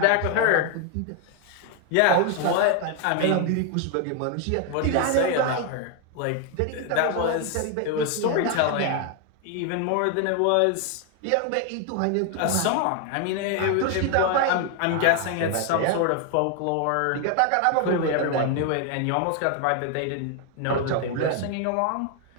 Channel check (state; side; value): different; both; correlation 0.01